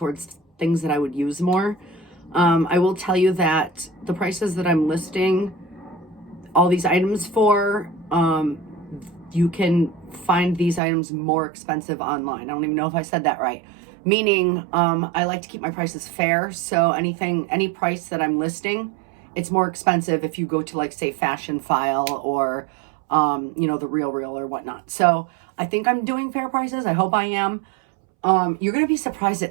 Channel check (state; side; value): drops out; left; at 10.8 s